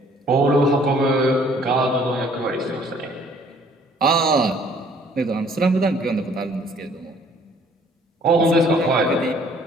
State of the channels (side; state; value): both; normal; correlation 0.58